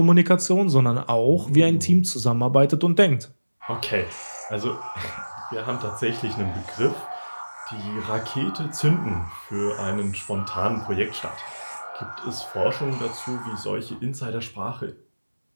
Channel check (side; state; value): both; inverted; correlation -1.00